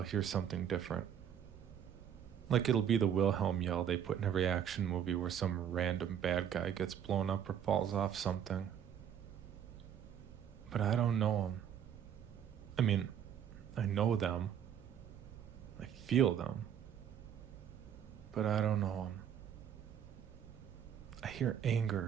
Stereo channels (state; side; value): quieter; left; 9.1 dB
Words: hear something different. Like it'll be the Wilhelm yell they put in every action movie where some random bad guy gets blown up or falls off something. But I don't know them. I mean, I know them. I feel them. But I don't know them. I hear